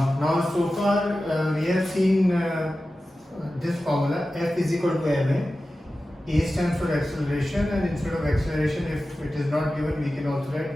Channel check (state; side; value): normal; both; correlation 0.94